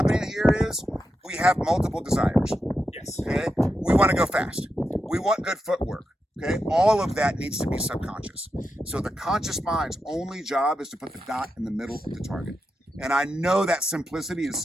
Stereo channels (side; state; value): both; normal; correlation 0.87